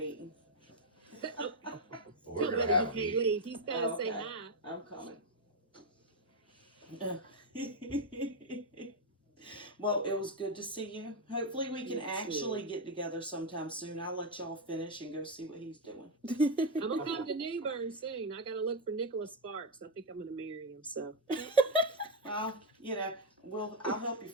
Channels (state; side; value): normal; both; correlation 0.04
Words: Nobody, he can't leave. He's got to say hi. I'm coming. Well, it was good to see you. Hopefully we can actually get together sometime soon. I'll let y'all finish and go see what he's doing. I'm going to come to New Bern soon. I got to look for Nicholas Sparks. I think I'm going to marry him, so. Well, I'll help you